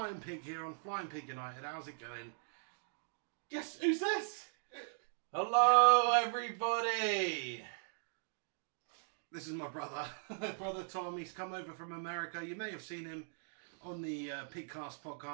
Pig here on Flying Pig United. How's it going? Guess who's this? Hello everybody! This is my brother, brother Tom. He's come over from America. You may have seen him on the PigCast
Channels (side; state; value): left; silent; digital silence